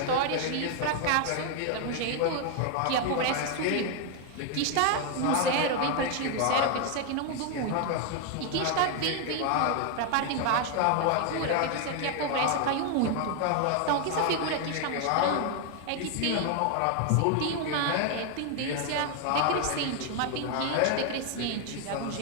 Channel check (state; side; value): different; both; correlation 0.01